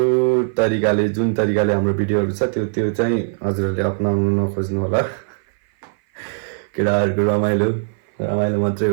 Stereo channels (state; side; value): silent; left; 58 dB below the other